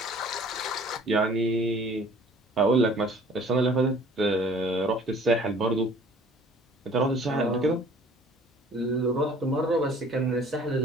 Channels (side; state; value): both; normal; correlation 0.51